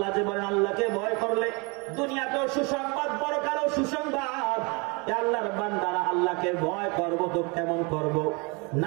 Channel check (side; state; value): left; quieter; 30.3 dB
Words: যে বলেন আল্লাহকে ভয় করলে দুনিয়াতেও সুসংবাদ, পরকালেও সুসংবাদ। আল্লাহর বান্দারা আল্লাহকে ভয় করব তো কেমন করব?